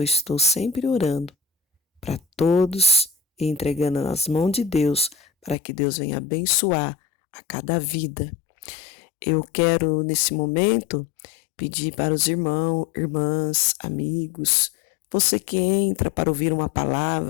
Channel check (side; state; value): right; drops out; at 5.6 s